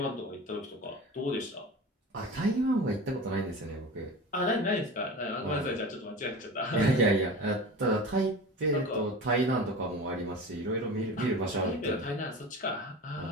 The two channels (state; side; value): normal; both; correlation 0.32